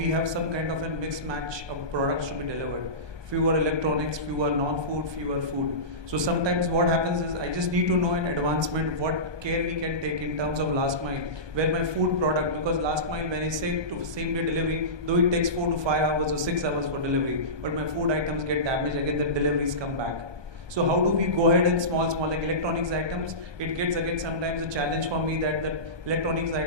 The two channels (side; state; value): left; late; 1.2 ms